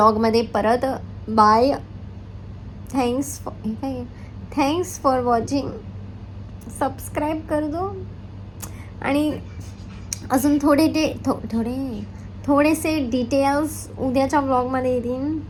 परत. Bye. Thanks for watching. Subscribe कर दो. आणि अजून थोडेसे डिटेल्स उद्याच्या व्लॉगमध्ये येतील.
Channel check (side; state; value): both; identical; correlation 1.00